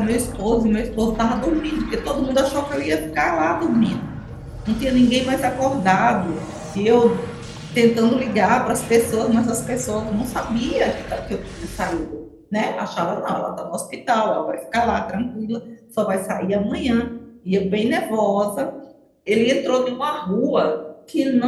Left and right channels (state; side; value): identical; both; correlation 1.00